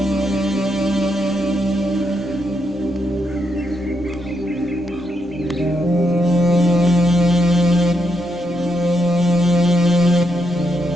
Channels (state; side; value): normal; both; correlation 0.80